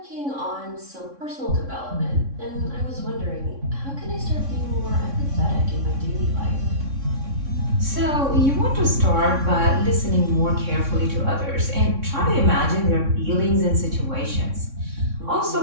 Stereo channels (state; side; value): late; left; 3.6 ms